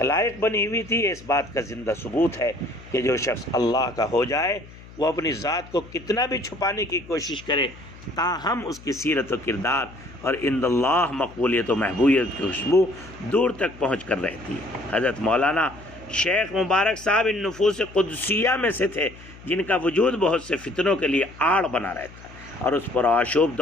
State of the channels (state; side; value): noise; left; hum, 19 dB below the sound